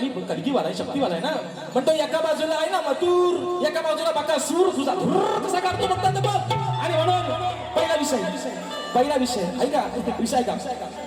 मी कलगीवाला आहे, शक्तीवाला आहे ना. म्हणतो एका बाजूला आहे ना मथुर, एका बाजूला बकासूर, तुझा कसा काढतो बघतात बघ. आणि म्हणून पहिला विषय ऐका, विषय का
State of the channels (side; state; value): both; identical; correlation 1.00